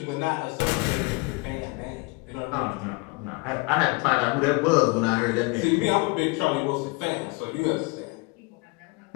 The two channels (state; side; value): quieter; right; 27.7 dB